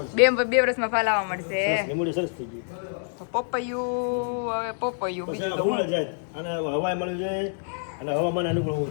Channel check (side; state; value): right; silent; digital silence